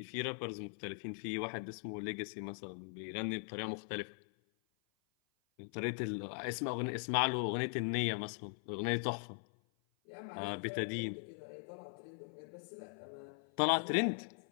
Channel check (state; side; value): silent; right; 51 dB below the other